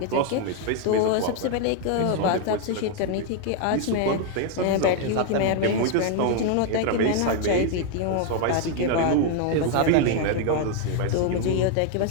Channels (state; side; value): different; both; correlation 0.00